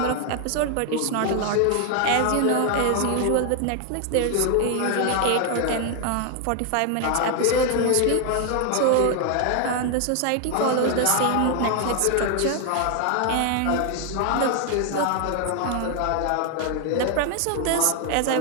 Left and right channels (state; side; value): different; both; correlation 0.00